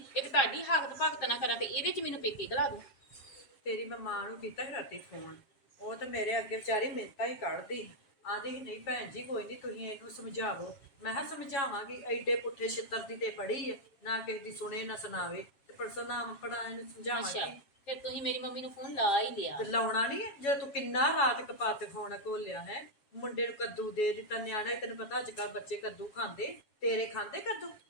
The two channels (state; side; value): late; right; 7.2 ms